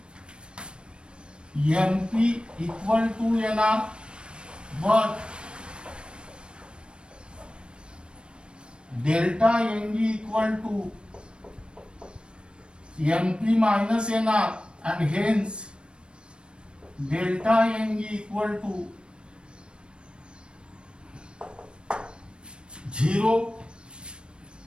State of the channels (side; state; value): left; late; 0.055 ms